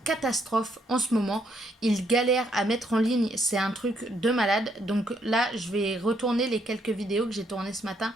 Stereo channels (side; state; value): both; normal; correlation 0.73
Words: catastrophe en ce moment. Il galère à mettre en ligne, c'est un truc de malade. Donc là, je vais retourner les quelques vidéos que j'ai tournées ce matin,